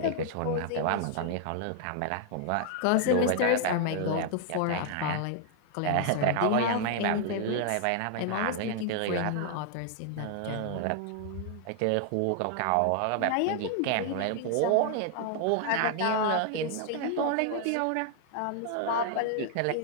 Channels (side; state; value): both; different; correlation 0.00